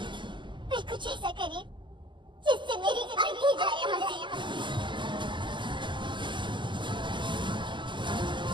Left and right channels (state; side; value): late; left; 0.23 ms